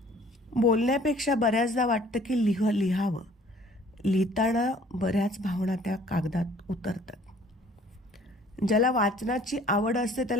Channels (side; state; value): both; normal; correlation 0.54